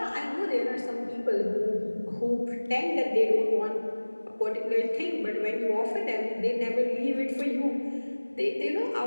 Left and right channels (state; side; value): inverted; both; correlation -1.00